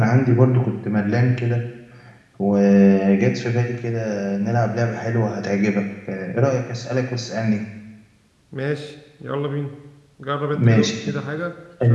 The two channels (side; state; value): both; identical; correlation 1.00